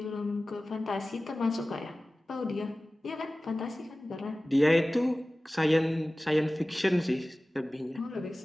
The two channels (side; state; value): both; normal; correlation 0.97